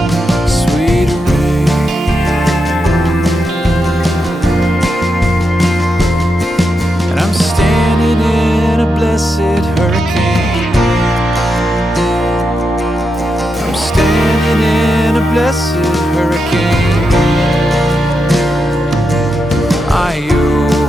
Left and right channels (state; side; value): normal; both; correlation 0.85